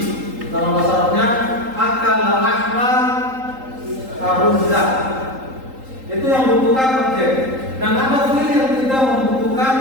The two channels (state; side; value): late; left; 3.8 ms